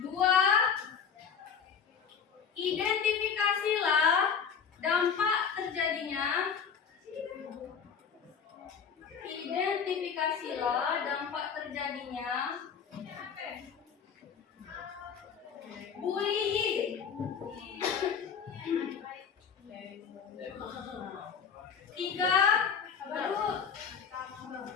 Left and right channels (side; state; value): right; quieter; 6.8 dB